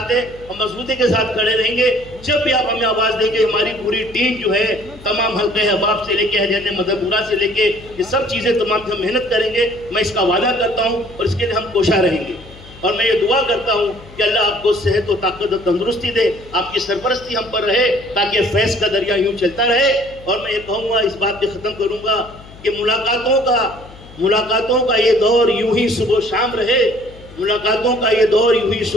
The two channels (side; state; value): left; noise; hum, 20 dB below the sound